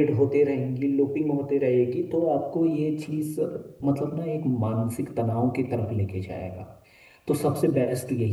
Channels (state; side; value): identical; both; correlation 1.00